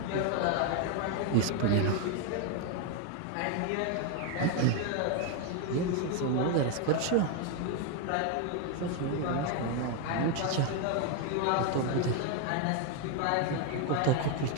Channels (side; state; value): both; different; correlation 0.01